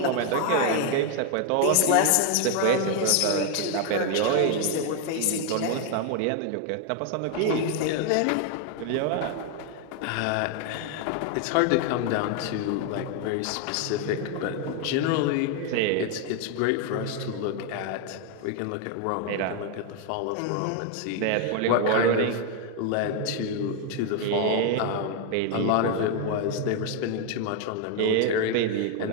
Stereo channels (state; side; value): different; both; correlation 0.01